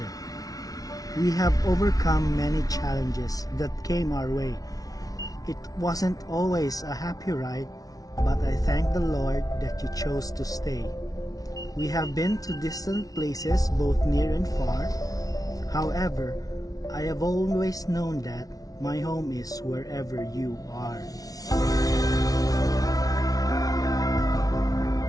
We have overcome many challenges that came our way. It wasn't always a happy ride, but I thank the Lord that you chose to stay. We have been to distant places both near and far. However, I have always known that my home is wherever you are.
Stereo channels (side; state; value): right; late; 0.18 ms